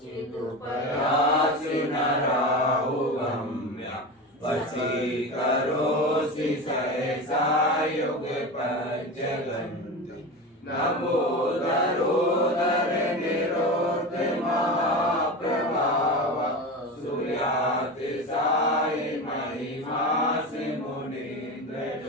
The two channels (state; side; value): normal; both; correlation 0.25